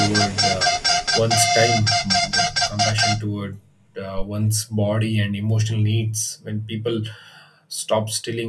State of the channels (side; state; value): both; identical; correlation 1.00